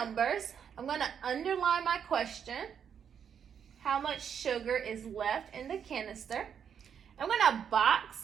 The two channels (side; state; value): left; quieter; 7.8 dB